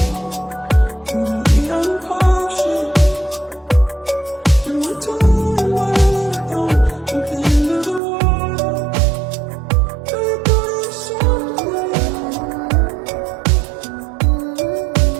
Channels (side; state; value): left; drops out; at 8.0 s